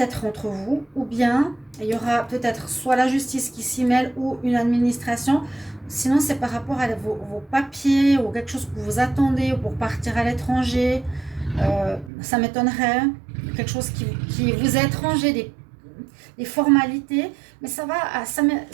entre vous, ou bien il y aura peut-être soit la justice qui s'y mêle ou une administration. Sinon, c'est par rapport à vos papiers ou quelque chose que vous attendez ou pour partir à l'étranger. Ça m'étonnerait. Quelque chose qui vous est étranger, des formalités. Mais ça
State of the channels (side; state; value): left; drops out; at 12.1 s